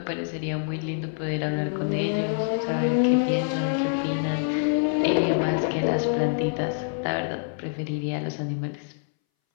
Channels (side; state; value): right; silent; 61 dB below the other